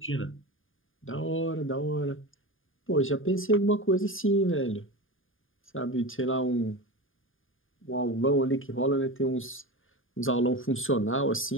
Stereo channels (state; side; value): late; right; 0.59 ms